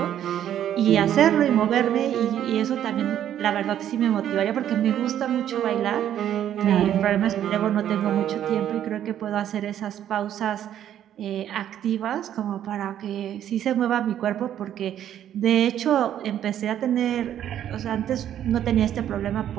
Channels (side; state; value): left; quieter; 10.7 dB